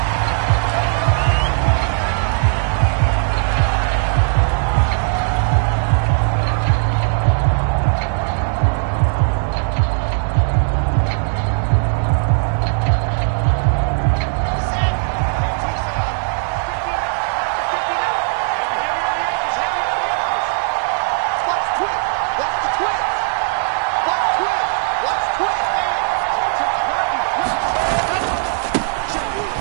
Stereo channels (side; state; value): left; silent; 65 dB below the other